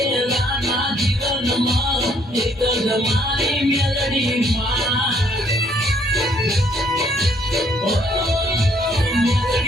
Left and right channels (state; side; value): normal; both; correlation 0.66